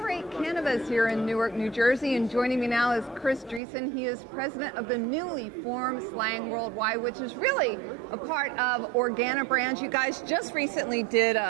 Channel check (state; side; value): drops out; left; at 3.6 s